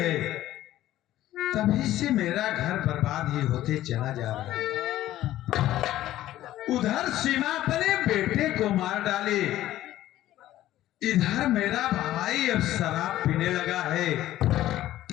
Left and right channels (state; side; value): quieter; right; 14.1 dB